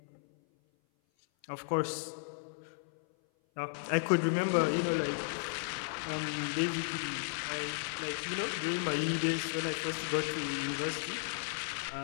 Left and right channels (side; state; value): right; silent; 55 dB below the other